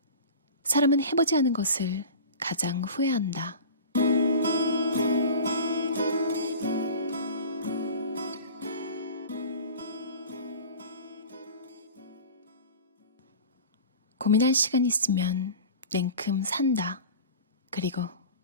사람은 해보지 않은 것을 가장 후회한다. 고민할 시간 있으면 냉큼 산다. 그리고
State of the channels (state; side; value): inverted; both; correlation -0.37